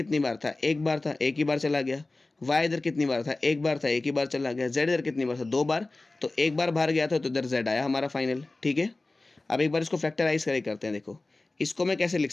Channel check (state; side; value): quieter; right; 3.1 dB